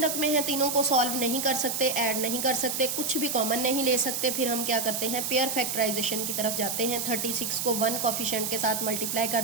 रकमें हैं, तीनों को सॉल्व नहीं कर सकते, ऐड नहीं कर सकते, कुछ भी कॉमन नहीं ले सकते। फिर हम क्या करते हैं, पेयर फैक्टराइजेशन की तरफ जाते हैं। 36 को 1 कोफिशिएंट के साथ मल्टीप्लाई कर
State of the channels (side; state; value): right; noise; hiss, 2 dB below the sound